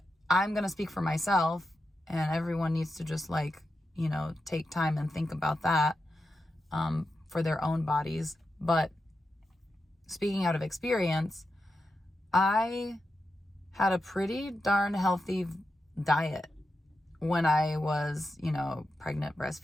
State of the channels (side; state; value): both; normal; correlation 0.88